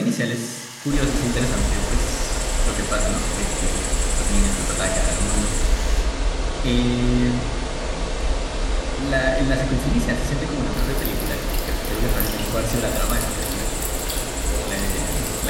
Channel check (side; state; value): both; identical; correlation 1.00